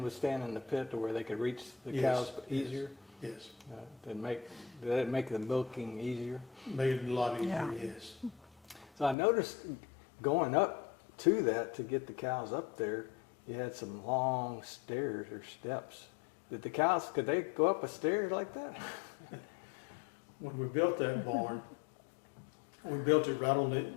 would stand in the pit to where they could reach the cows easier. Yes. Did that make the milking easier? Made it a lot easier. Yeah. Yes. So I noticed going up to that to get the cows up there, you had some long stairs or steps. Did the cows, could they go up a stair like that? When we built that barn, we built it right on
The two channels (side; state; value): right; drops out; at 9.2 s